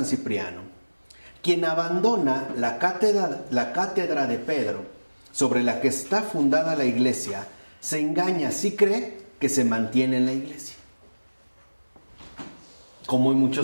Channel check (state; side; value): inverted; both; correlation -1.00